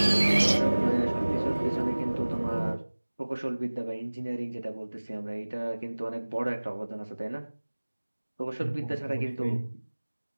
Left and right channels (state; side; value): inverted; both; correlation -1.00